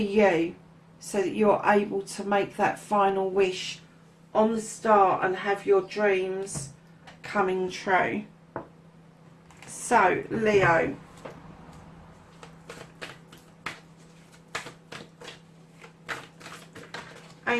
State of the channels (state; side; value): identical; both; correlation 1.00